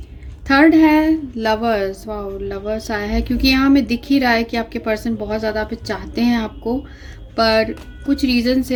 थर्ड है लवर्स। वाओ, लवर्स आया है क्योंकि यहाँ हमें दिख ही रहा है कि आपके पर्सन बहुत ज़्यादा पे चाहते हैं आपको, पर कुछ रीज़न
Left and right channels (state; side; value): identical; both; correlation 1.00